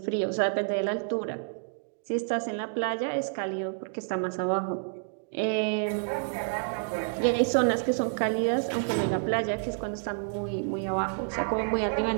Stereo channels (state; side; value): silent; left; digital silence